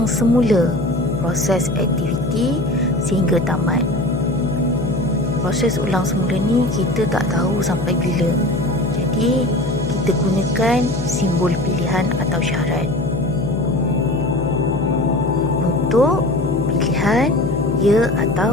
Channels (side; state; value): left; noise; hum, 4 dB below the sound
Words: semula proses aktiviti sehingga tamat. Proses ulang semula ni kita tak tahu sampai bila. Jadi, kita gunakan simbol pilihan atau syarat. Untuk pilihan ya